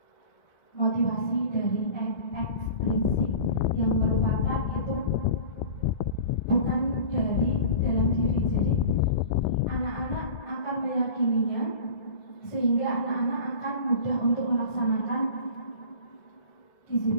motivasi dari ekstrinsik yang merupakan itu bukan dari dalam diri. Jadi anak-anak akan meyakininya sehingga anak-anak akan mudah untuk melaksanakan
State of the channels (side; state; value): right; late; 1.7 ms